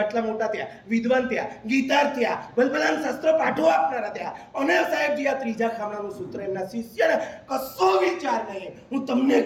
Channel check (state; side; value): identical; both; correlation 1.00